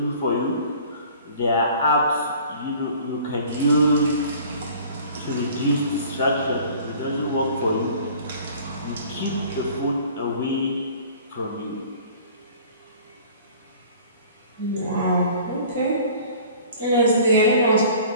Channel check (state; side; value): inverted; both; correlation -0.48